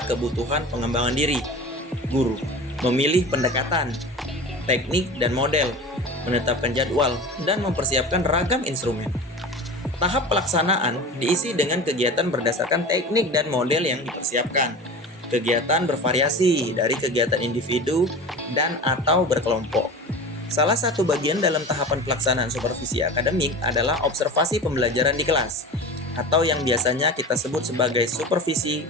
kebutuhan pengembangan diri, guru, memilih pendekatan, teknik, dan model, menetapkan jadwal, dan mempersiapkan ragam instrumen. Tahap pelaksanaan diisi dengan kegiatan berdasarkan teknik dan model yang dipersiapkan. Kegiatan bervariasi dari kegiatan individu dan atau berkelompok. Salah satu bagian dalam tahapan pelaksanaan supervisi akademik adalah observasi pembelajaran di kelas, atau yang biasanya kita sebut sebagai supervisi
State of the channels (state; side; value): normal; both; correlation 0.33